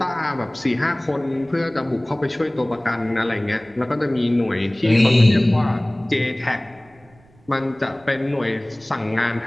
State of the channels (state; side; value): noise; right; rumble, 29 dB below the sound